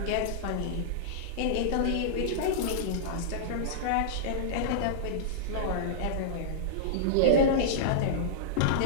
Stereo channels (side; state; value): both; different; correlation -0.03